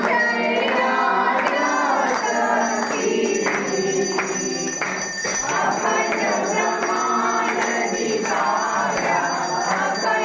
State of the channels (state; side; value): identical; both; correlation 1.00